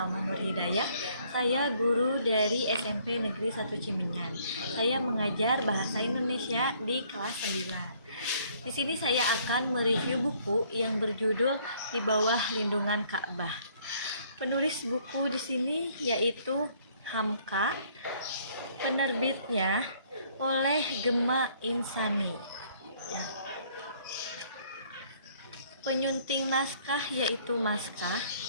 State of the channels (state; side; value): inverted; both; correlation -0.62